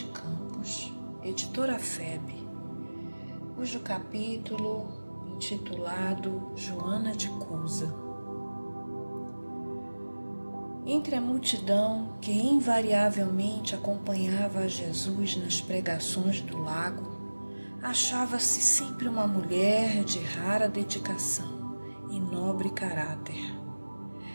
Campos, editora FEB, cujo capítulo intitulado Joana de Cusa. Entre a multidão que invariavelmente acompanhava a Jesus nas pregações do lago, achava-se sempre uma mulher de rara dedicação e nobre caráter,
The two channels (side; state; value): both; inverted; correlation -1.00